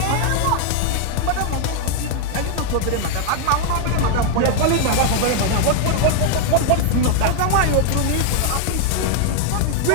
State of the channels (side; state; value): both; different; correlation 0.00